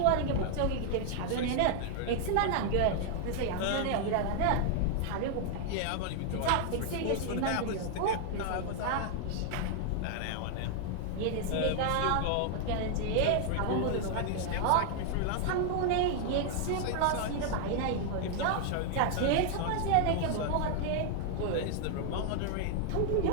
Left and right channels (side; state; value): both; different; correlation 0.00